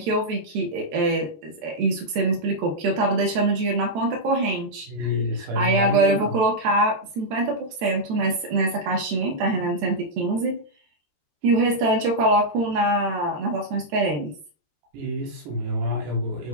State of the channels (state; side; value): late; left; 13 ms